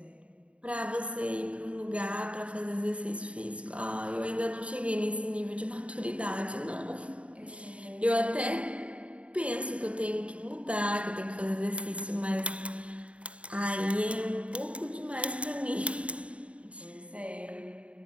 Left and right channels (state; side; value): late; left; 0.063 ms